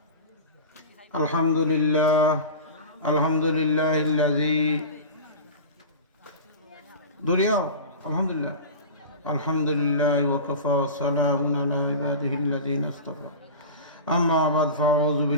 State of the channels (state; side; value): inverted; both; correlation -0.31